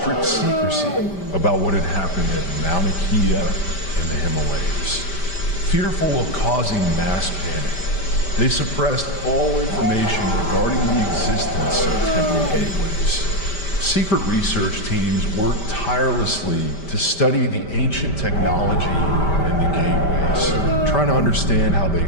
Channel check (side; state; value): right; late; 5.1 ms